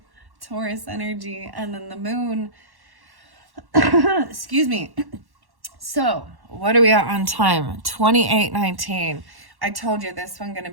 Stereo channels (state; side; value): late; left; 1.1 ms